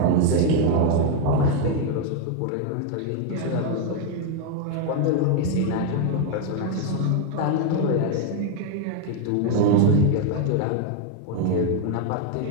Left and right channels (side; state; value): both; different; correlation 0.01